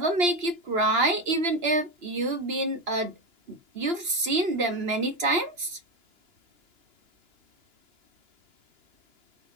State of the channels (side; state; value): left; late; 2.9 ms